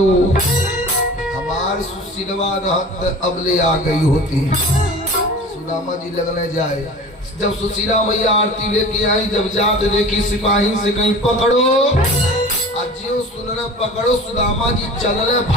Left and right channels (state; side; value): normal; both; correlation 0.38